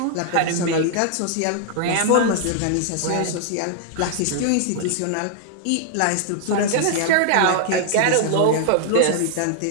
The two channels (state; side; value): different; both; correlation 0.00